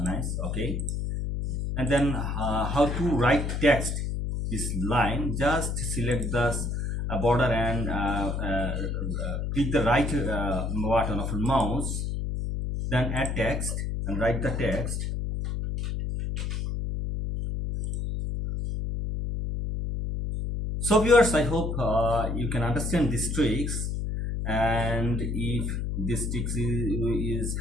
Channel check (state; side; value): noise; left; hum, 2 dB below the sound